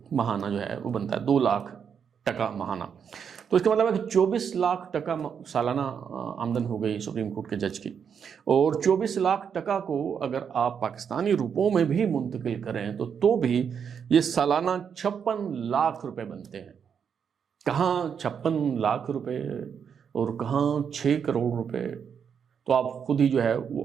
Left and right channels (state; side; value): quieter; left; 7.3 dB